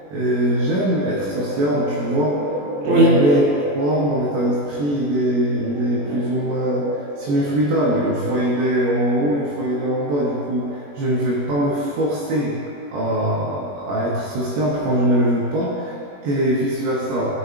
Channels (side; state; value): left; late; 21 ms